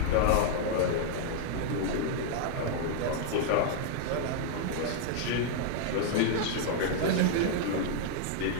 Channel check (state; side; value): different; both; correlation -0.01